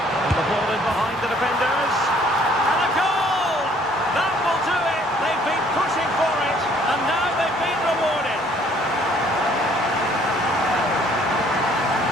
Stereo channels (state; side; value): normal; both; correlation 0.60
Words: the ball in behind the defenders. And a goal! That will do it. They've been pushing for it. And now they've been rewarded.